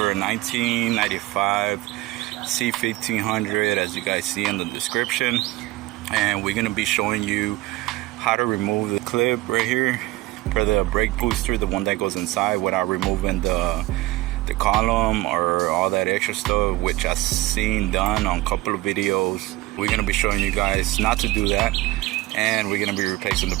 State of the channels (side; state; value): left; quieter; 18.9 dB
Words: a 1995 C1500, as you guys see in the description, and we're going to be showing you how to remove the clip right here for the brake booster, the one that goes inside, without removing the column or all that extra stuff, which I've seen done on a couple of videos. We're going to be showing you guys not to do that, and we're going to be replacing the